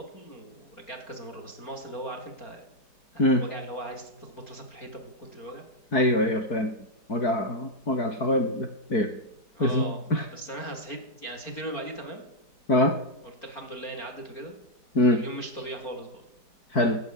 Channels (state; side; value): late; right; 4.4 ms